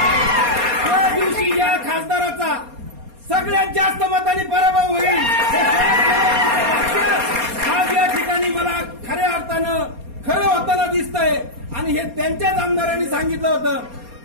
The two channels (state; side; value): late; left; 4.2 ms